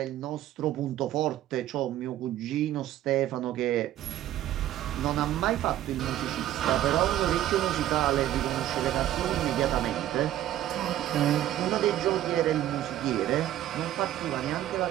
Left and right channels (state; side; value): quieter; left; 12.9 dB